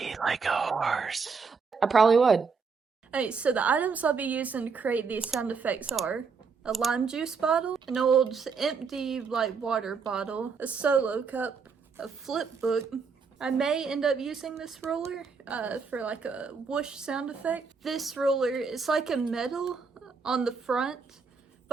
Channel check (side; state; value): left; quieter; 5.2 dB